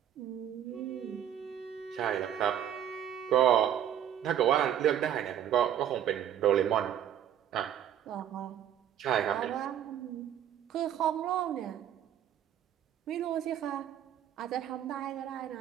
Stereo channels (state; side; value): quieter; left; 10.3 dB